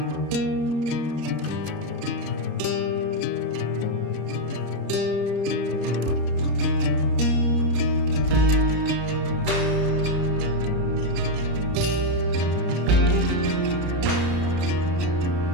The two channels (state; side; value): late; left; 33 ms